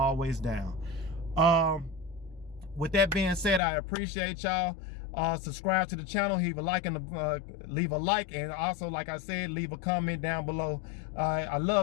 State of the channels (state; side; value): drops out; right; at 3.6 s